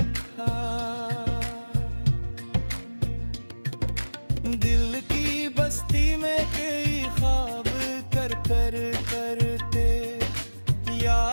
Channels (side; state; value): both; inverted; correlation -1.00